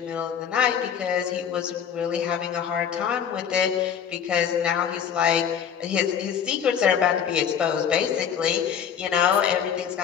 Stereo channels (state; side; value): quieter; right; 8.0 dB